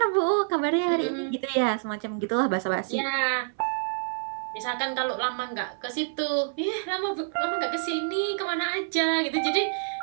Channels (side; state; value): left; silent; 60 dB below the other